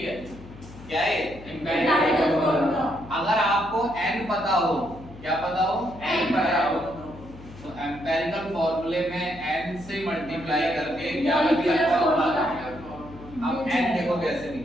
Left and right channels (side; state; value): left; noise; hum, 17 dB below the sound